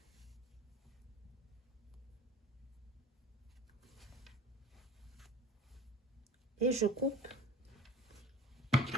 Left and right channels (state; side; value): normal; both; correlation 0.41